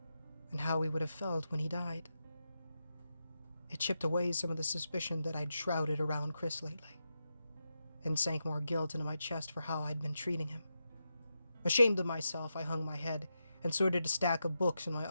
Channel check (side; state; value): both; inverted; correlation -0.87